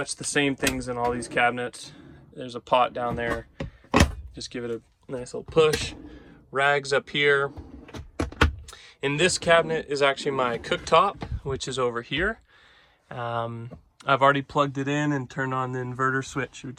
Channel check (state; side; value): identical; both; correlation 1.00